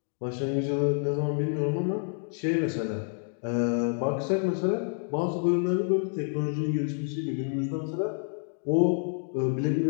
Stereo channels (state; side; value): silent; right; 59 dB below the other